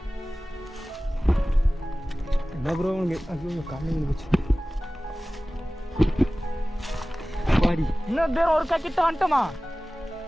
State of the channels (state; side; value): normal; both; correlation 0.97